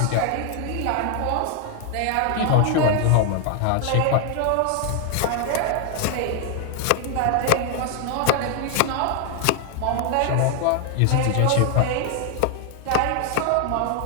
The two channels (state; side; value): different; both; correlation 0.00